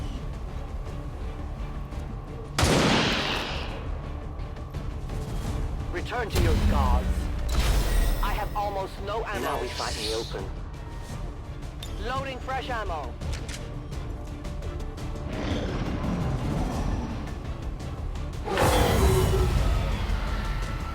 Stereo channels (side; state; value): both; identical; correlation 1.00